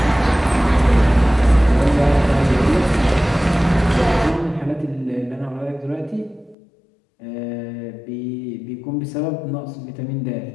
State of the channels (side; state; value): right; drops out; at 6.6 s